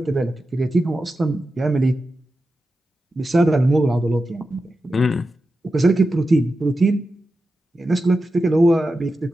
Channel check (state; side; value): normal; both; correlation 0.91